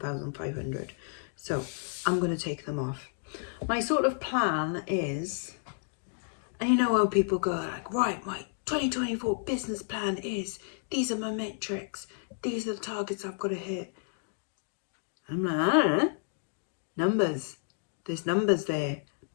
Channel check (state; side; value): silent; right; digital silence